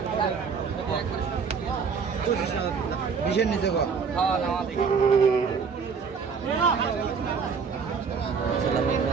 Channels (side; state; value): left; quieter; 5.7 dB